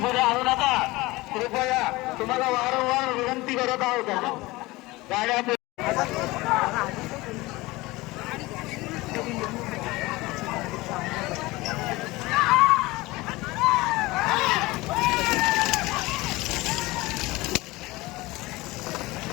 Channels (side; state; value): right; quieter; 20.9 dB